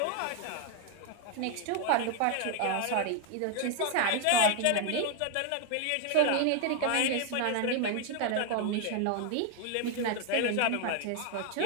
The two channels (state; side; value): different; both; correlation 0.01